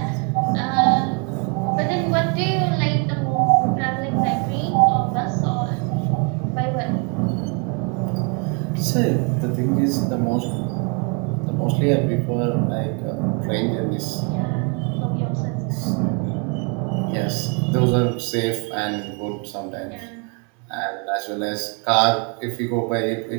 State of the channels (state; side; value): quieter; left; 34.2 dB